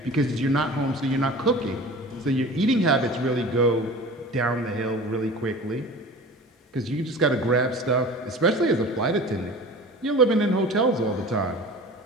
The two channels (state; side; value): normal; both; correlation 0.39